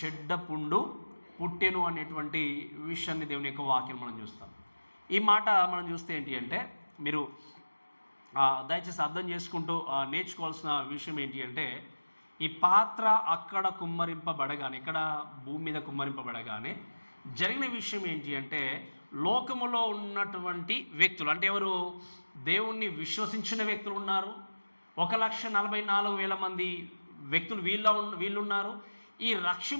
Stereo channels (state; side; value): inverted; both; correlation -1.00